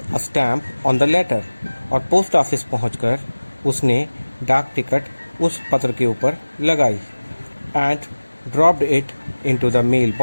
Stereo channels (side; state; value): both; inverted; correlation -1.00